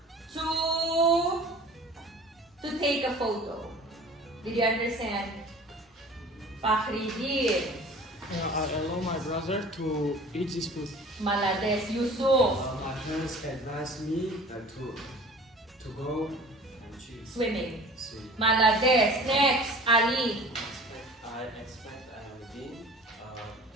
to take a photo. Did you understand? Faridun. I allow my brother to eat this food. Malades. Yusuf. My parents advised me to go and Swimming. swim. Malades. Next. Ali. I expect Alvin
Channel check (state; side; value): normal; both; correlation 0.44